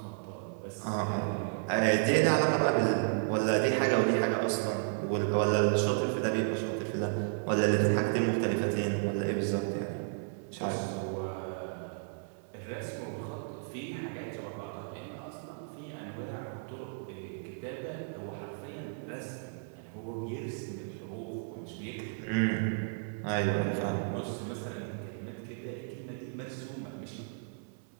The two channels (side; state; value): left; silent; 56 dB below the other